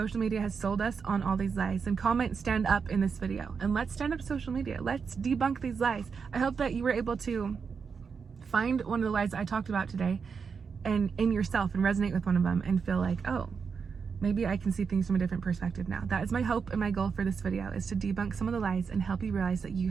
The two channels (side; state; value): left; quieter; 5.8 dB